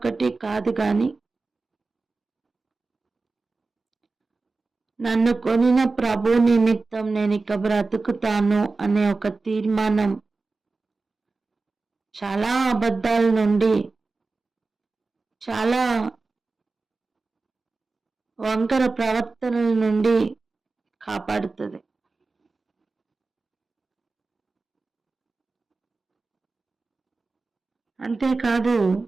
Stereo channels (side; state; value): left; quieter; 3.8 dB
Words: కాదు, కానీ నన్ను కొనిన ప్రభు నిమిత్తం నేను ఇక బ్రతుకుతాను అనే ఒక తీర్మానం చాలా అబద్ధాల నుండి, చాలా వంకర ప్రవర్తనల నుండి కాపాడుతుంది. అంతేకాదు